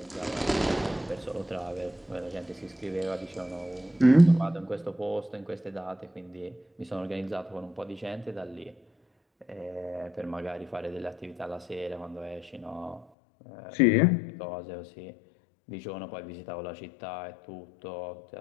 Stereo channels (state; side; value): drops out; right; at 13.1 s